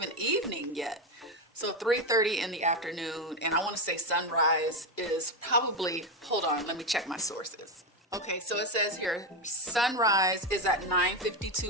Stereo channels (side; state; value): both; normal; correlation 0.11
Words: evening yet. So 3:30 in the afternoon, and I want to say sunrise is probably, hold on, let me check my sources. Okay, so it says here, sunrise is at